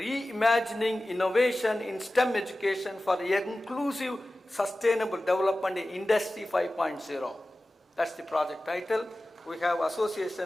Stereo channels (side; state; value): both; normal; correlation 0.96